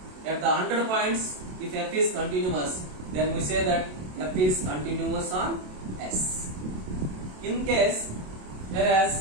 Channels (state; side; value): late; left; 27 ms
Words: At the 100 points, if f is continuous, then we say that f is continuous on S. In case,